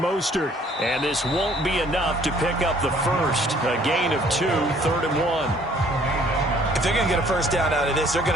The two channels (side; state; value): both; normal; correlation 0.59